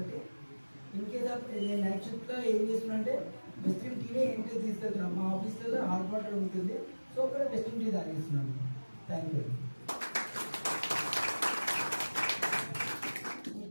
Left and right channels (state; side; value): inverted; both; correlation -1.00